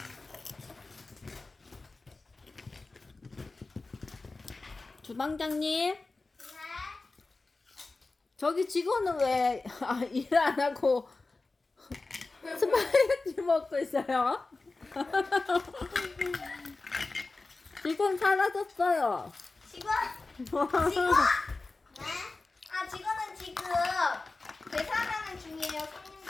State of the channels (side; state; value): right; quieter; 3.5 dB